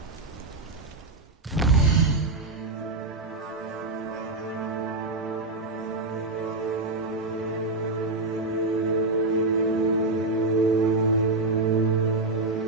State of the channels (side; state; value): left; quieter; 3.2 dB